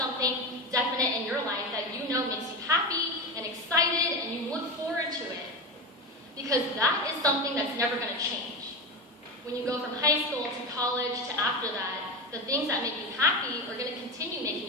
definite in your life that you know makes you happy and excited and you look forward to it. Because that is something that's never going to change. When you go from high school to college to after that, the things that make you happy are going to continue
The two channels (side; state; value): both; normal; correlation 0.20